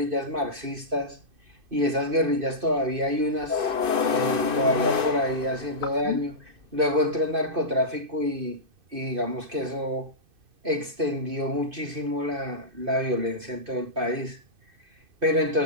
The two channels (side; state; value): left; late; 2.6 ms